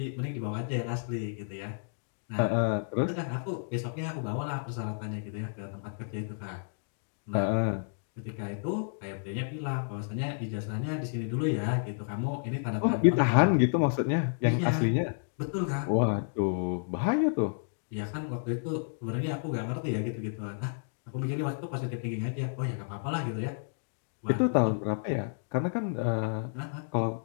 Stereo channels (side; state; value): right; silent; digital silence